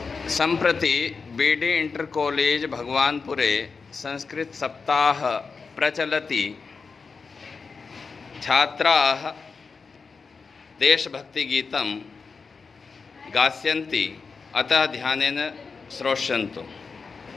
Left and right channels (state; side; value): quieter; right; 4.9 dB